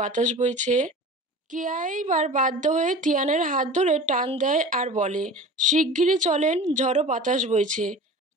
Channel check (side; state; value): both; normal; correlation 0.37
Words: বইছে। কেয়া এইবার বাধ্য হয়ে তিয়ানের হাত ধরে টান দেয় আর বলে, শিগগিরই চলেন, ঝড়ো বাতাস বইছে।